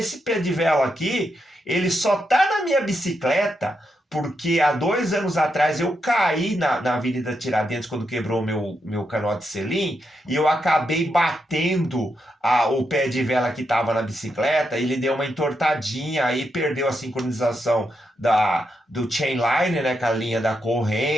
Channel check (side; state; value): both; normal; correlation 0.83